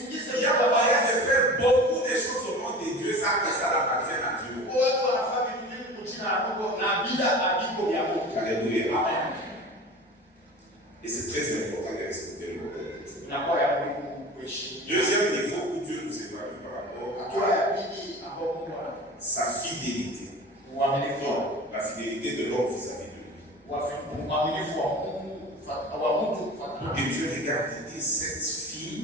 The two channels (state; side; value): normal; both; correlation 0.36